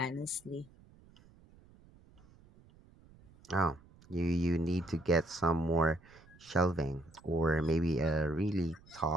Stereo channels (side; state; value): right; noise; rumble, 26 dB below the sound